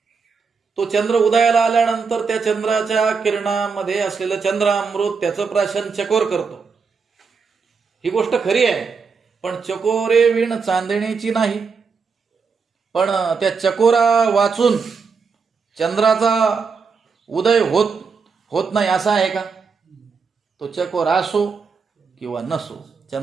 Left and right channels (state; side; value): quieter; left; 5.3 dB